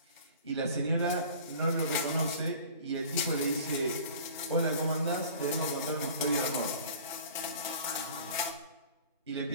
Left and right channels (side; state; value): both; inverted; correlation -0.44